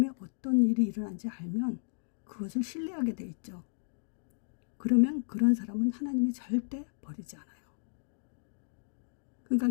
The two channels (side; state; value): right; silent; digital silence